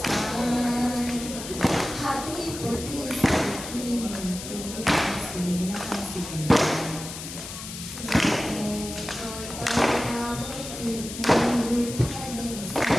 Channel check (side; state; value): left; noise; hiss, 9 dB below the sound